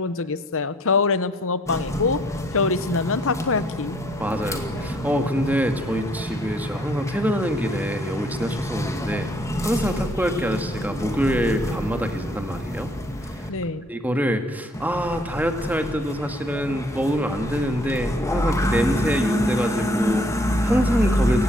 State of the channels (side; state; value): both; normal; correlation 0.63